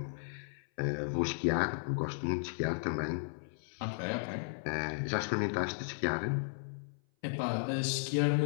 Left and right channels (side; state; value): right; silent; 55 dB below the other